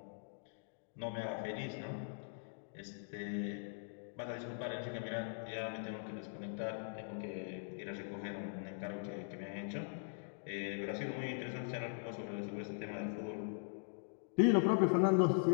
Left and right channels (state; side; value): silent; right; digital silence